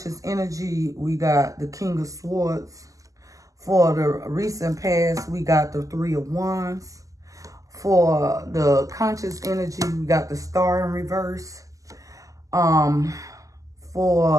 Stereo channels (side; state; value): left; late; 0.16 ms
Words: energy, we got the King of Swords. For the recent past, we got the 3 of Wands. For the conscious energy, we got the Star in reverse.